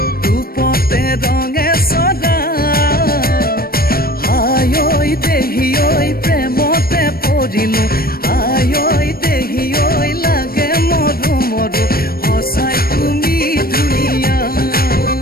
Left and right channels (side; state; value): right; late; 0.44 ms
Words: রূপতে রঙে সদা হায় ওই দেহি ওই প্রেমতে পড়িলো হায় ওই দেহি ওই লাগে মরু মরু হসাই তুমি ধুনিয়া